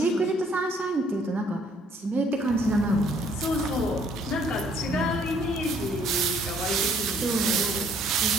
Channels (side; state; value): both; normal; correlation 0.63